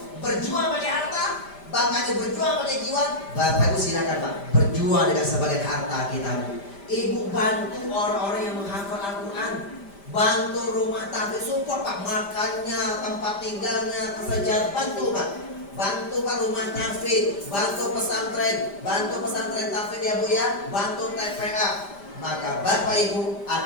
berjuang pakai harta, bahkan berjuang pakai jiwa. Bapak Ibu silakan Pak, berjuang dengan sebagian harta kita Bu. Ibu bantu orang-orang yang menghafal Al-Quran. Bantu rumah tafid, support Pak, makannya, tempat tinggalnya, kesejahteraan, bantu Pak. Bantu Pak rumah tafid, bantu pesantren tafid ya Bu ya, bantu TPA. Maka Bapak Ibu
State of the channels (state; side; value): late; right; 5.1 ms